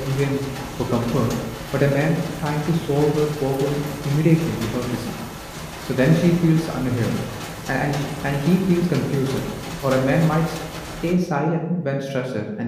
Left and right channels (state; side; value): identical; both; correlation 1.00